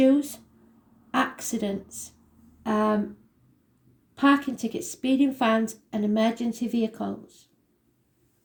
accidents, parking tickets, speeding fines, and emergency vehicles.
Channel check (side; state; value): both; identical; correlation 1.00